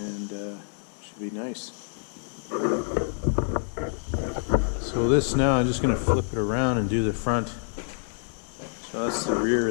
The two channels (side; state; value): right; silent; 59 dB below the other